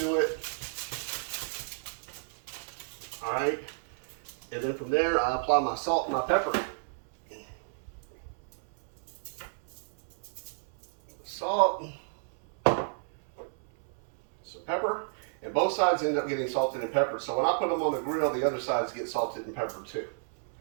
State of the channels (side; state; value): left; silent; 57 dB below the other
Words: it. All right. And then from there, I apply my salt and my pepper. Salt, some pepper, and both sides end up getting salted and peppered. So when I put them on the grill, the other sides get salted and peppered too.